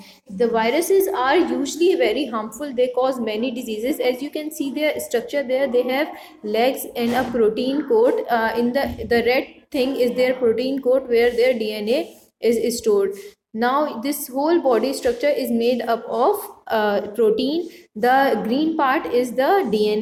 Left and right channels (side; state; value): both; identical; correlation 1.00